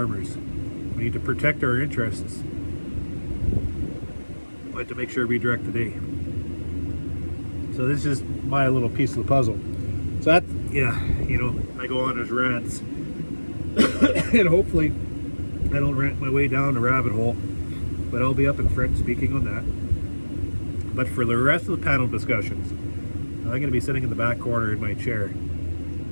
We need to protect our interests, but to make sure we direct the day. So this is my little piece of the puzzle. So that, I go on as rants, and hopefully I don't rant my way down a rabbit hole, but I'll be up in front speaking on that. But for the rest of the panel discussions, I'm going to be sitting in the back corner in my chair,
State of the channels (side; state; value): both; inverted; correlation -1.00